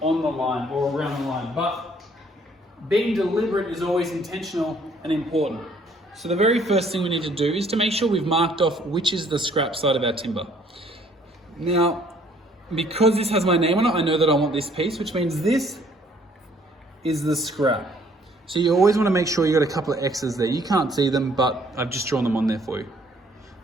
on the line or around the line, but being deliberate is always intentional and important. So the very first thing we need to do is to make sure we've marked off which is the scrap side of our timber. Now, because this has my name on it, I know that I want this piece, which means this is the scrap. So you always want to make sure you got a couple of X's there. You can't see them, but I've just drawn them on there for you.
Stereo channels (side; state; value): both; normal; correlation 0.61